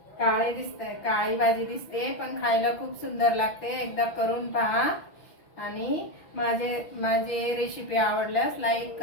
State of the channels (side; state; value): right; late; 6.0 ms